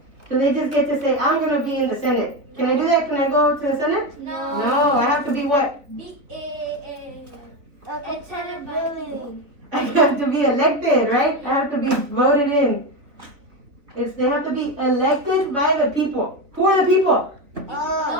Do they just get to say, I'm going to be in the Senate? Can I do that? Can I go to the Senate? No, I have to be what? I have to be elected, right? I have to be voted in. They have to be elected by the people. Who are the people?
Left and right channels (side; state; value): left; late; 3.3 ms